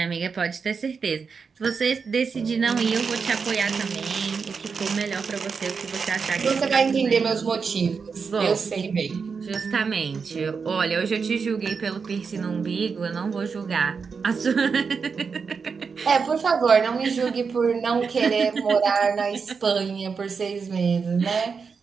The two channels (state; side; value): quieter; left; 5.5 dB